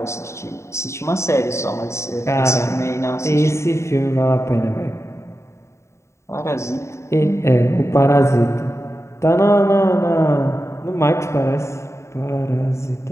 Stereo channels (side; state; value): right; late; 0.14 ms